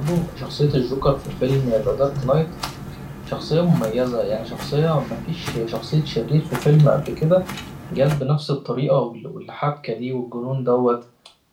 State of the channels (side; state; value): both; identical; correlation 1.00